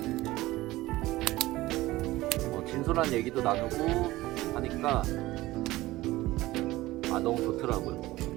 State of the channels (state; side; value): quieter; left; 18.0 dB